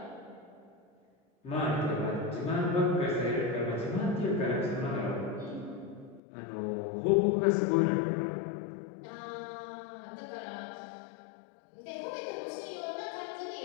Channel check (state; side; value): drops out; right; at 6.2 s